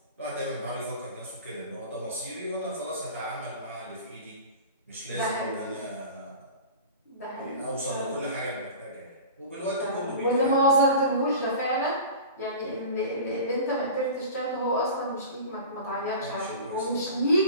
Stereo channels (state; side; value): inverted; both; correlation -0.36